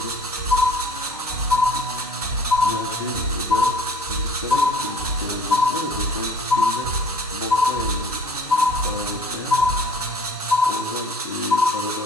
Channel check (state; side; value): normal; both; correlation 0.51